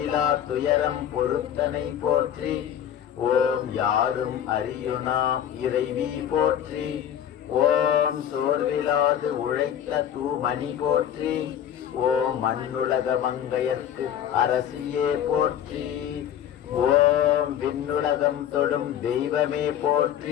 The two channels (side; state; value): right; quieter; 10.0 dB